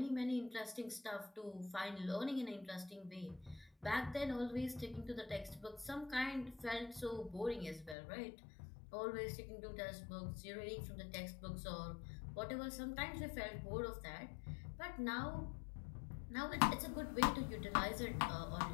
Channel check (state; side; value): drops out; right; at 8.0 s